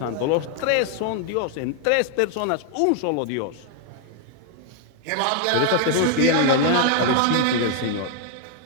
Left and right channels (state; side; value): different; both; correlation 0.00